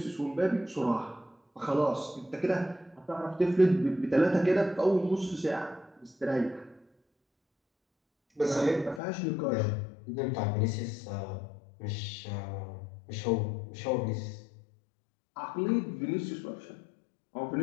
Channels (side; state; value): right; drops out; at 9.0 s